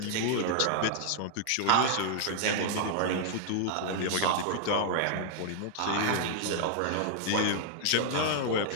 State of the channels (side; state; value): both; different; correlation 0.00